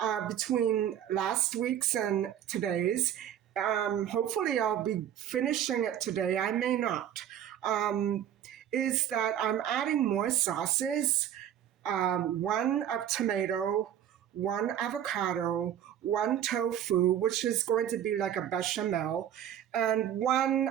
between last week's and today's, hopefully I'll be finishing it today, I may not, is that I'm adding more sauces, one of tomato, one avocado, one tofu, which is going to be like a bechamel, and one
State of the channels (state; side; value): quieter; left; 10.3 dB